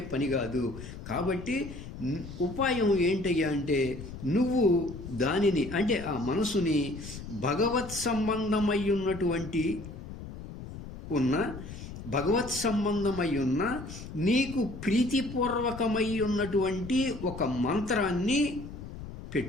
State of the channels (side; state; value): left; noise; rumble, 11 dB below the sound